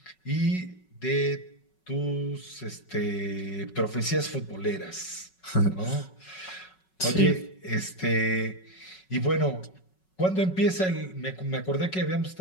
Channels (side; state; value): right; late; 5.4 ms